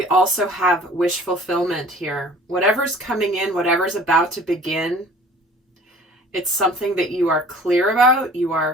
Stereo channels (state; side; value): normal; both; correlation 0.48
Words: also have wish fulfillment here. Whatever's coming in, whatever's about to begin, it's something that you are clear about, you are